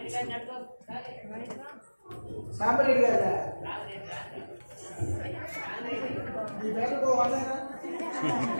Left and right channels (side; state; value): both; inverted; correlation -1.00